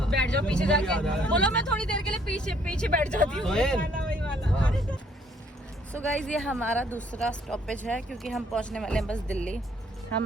बैठ जाओ पीछे जाके। बोलो मैं थोड़ी देर के लिए पीछे बैठ जाती हूँ। सो गाइज ये हमारा दूसरा स्टॉपेज है क्योंकि हम पहुँचने वाले हैं बस दिल्ली।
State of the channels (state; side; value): normal; both; correlation 0.64